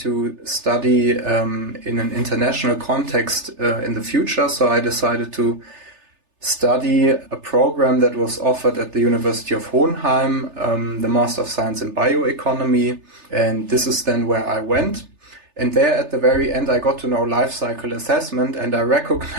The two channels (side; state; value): left; late; 3.3 ms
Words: study in an international context in the future. So I decided to study a program that was offered at the University of Hohenheim, the Master of Science in Bioeconomy. And this is then where I went. And there at the very end, I got to know life cycle assessment, and I